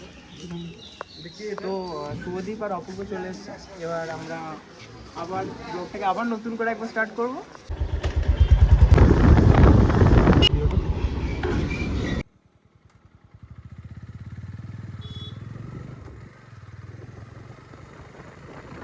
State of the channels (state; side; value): identical; both; correlation 1.00